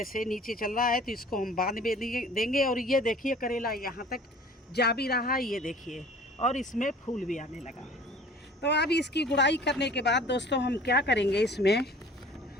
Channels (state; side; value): normal; both; correlation 0.47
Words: से नीचे चल रहा है तो इसको हम बांध में देंगे। और ये देखिए करेला यहाँ तक जा भी रहा है, ये देखिए, और इसमें फूल भी आने लगा। तो अब इसकी गुड़ाई करने के बाद दोस्तों हम क्या करेंगे, इसमें